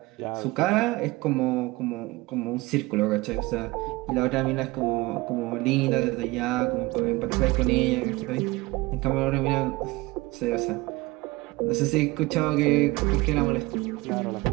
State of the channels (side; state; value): left; quieter; 21.8 dB